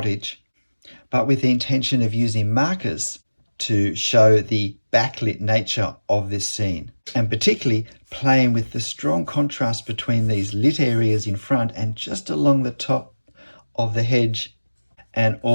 but with the intention of using markers to show the backlit nature of this scene, and particularly playing with the strong contrast between these lit areas in front and just along the top of the hedge and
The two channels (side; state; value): both; inverted; correlation -1.00